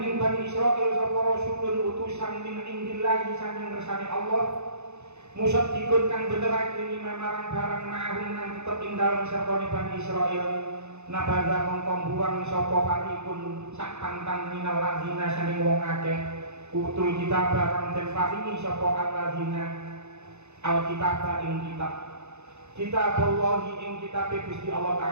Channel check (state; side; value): late; left; 0.81 ms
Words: ing Bani Israil sapa rasulun utusan min indillahi saking ngersane Allah musaddiqun kang benerake lima marang barang ma'hum nang tetep ing dalem sertane Bani Israil nabada mongko buang sapa farikun sak pantang minal ladzina saking wong akeh utul kitab barang den paringi sapa alladzina alkitab ing kitab Allah ing kitab Gusti Allah